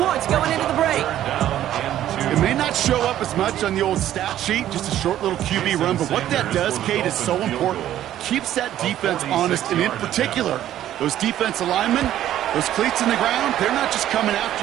going into the break. It may not show up as much on the old stat sheet, just a short little QB run, but what that does, Kate, is so important. Keeps that defense honest, and in particular, those defensive linemen, those cleats in the ground, they're not just coming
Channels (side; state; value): left; quieter; 12.2 dB